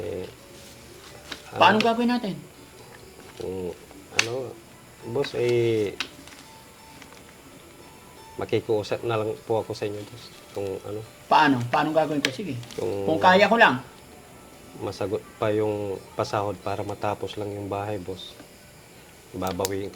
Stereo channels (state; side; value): identical; both; correlation 1.00